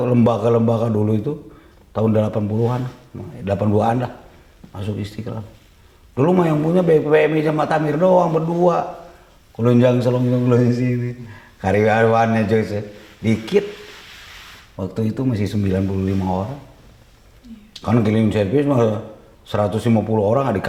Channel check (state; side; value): identical; both; correlation 1.00